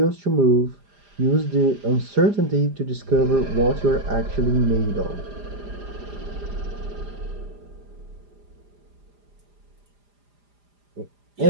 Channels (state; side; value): late; left; 4.9 ms